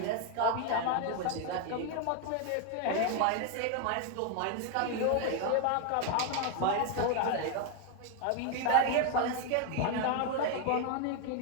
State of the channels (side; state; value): both; different; correlation 0.01